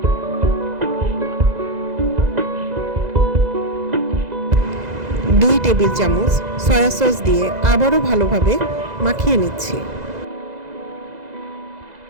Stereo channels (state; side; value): late; left; 2.0 ms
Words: দুই টেবিল চামচ সয়া সস দিয়ে আবারও ভালোভাবে মাখিয়ে নিচ্ছি।